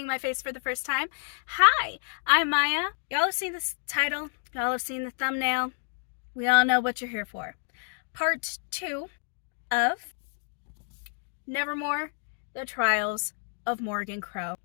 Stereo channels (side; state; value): right; silent; 58 dB below the other